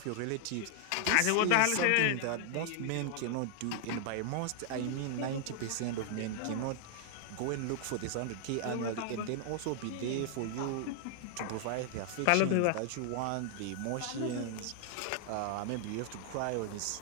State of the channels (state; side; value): different; both; correlation 0.00